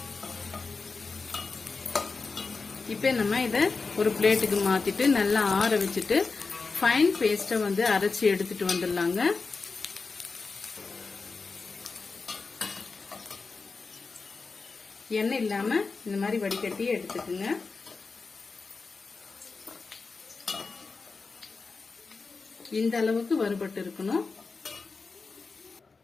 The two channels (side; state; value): right; quieter; 4.3 dB